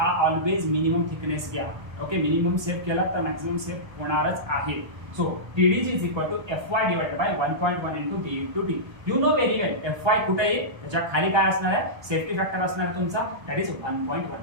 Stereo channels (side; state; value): left; late; 1.2 ms